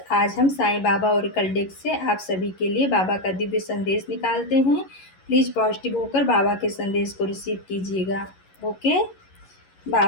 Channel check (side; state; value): right; late; 11 ms